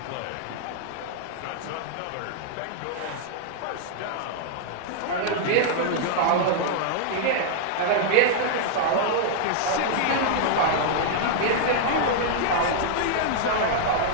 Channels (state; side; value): different; both; correlation -0.01